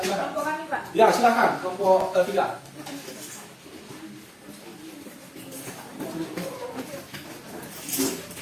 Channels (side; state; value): both; identical; correlation 1.00